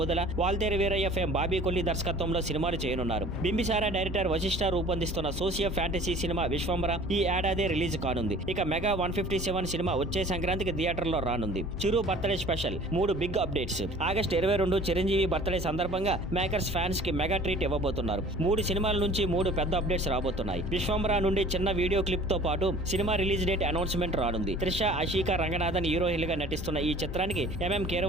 వాల్తేరు వీరయ్య ఫేమ్ బాబీ కొల్లి దర్శకత్వంలో సినిమాలు చేయనున్నారు. బింబిసారా డైరెక్టర్ వశిష్ఠ రూపొందిస్తున్న సోషియో ఫ్యాంటసీ సినిమా విశ్వంబర ఈ ఏడాది రిలీజ్ కానుంది. ఇక మెగా 157 సినిమా వచ్చే సంక్రాంతికి థియేటర్లో రానుంది. Chiru birthday special 3 big updates. August 22 Chiranjeevi birthday సందర్భంగా మేకర్స్ ఫ్యాన్స్ కి మెగా ట్రీట్ ఇవ్వబోతున్నారు. 3 సినిమాల నుంచి 3 పెద్ద అప్డేట్స్ రాబోతున్నాయి. విశ్వంబర నుండి చిన్న వీడియో క్లిప్ తో పాటు సినిమా రిలీజ్ డేట్ అనౌన్స్మెంట్ రానుంది. త్రిష, ఆషికా రంగనాథన్ హీరోయిన్లుగా నటిస్తున్న ఈ చిత్రానికి ఎంఎం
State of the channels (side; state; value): both; normal; correlation 0.48